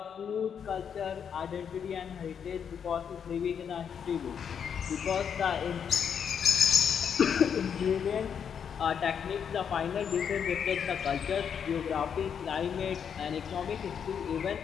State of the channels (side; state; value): right; quieter; 7.5 dB